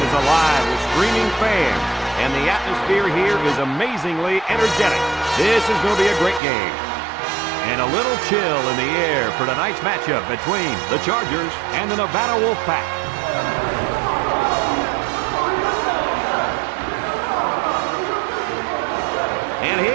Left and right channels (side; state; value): left; drops out; at 6.4 s